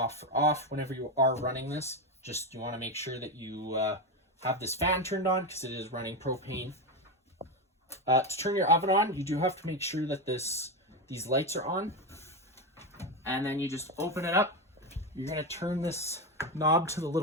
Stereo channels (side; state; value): both; normal; correlation 0.13